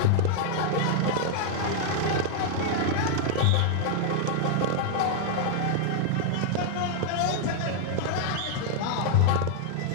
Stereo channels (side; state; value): both; different; correlation 0.00